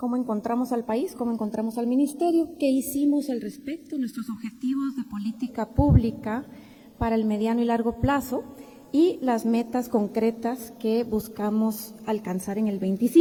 encontramos al país, cómo encontramos al ministerio, qué hicimos al respecto, nuestros objetivos de política pública para el mediano y largo plazo y las metas concretas que buscamos alcanzar en el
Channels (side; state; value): both; identical; correlation 1.00